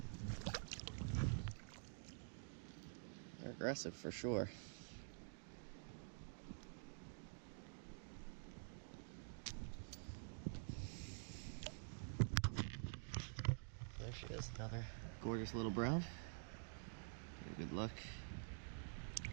They're aggressive for sure. There she is, another gorgeous little brown. Good luck.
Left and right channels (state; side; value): silent; left; digital silence